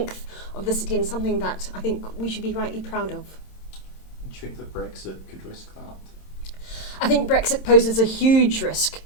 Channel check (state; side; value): late; right; 27 ms